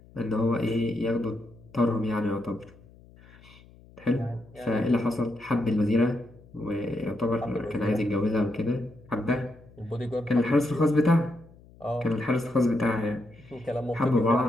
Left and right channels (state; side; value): noise; left; hum, 24 dB below the sound